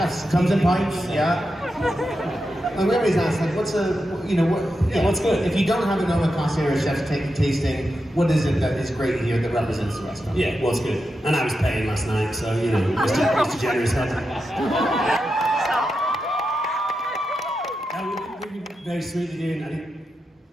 Comes in pints, yeah. Like we always ask, what's what's good? If you don't have an omakase or a chef's tasting, what is it that is great here that represents the restaurant? Yeah, what's good? And I was paying last night, so Mr. Generous head. We'd be very sweet to do. I think,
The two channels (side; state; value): both; normal; correlation 0.88